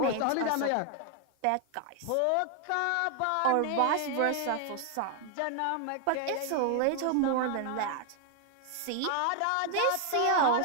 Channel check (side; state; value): both; different; correlation 0.00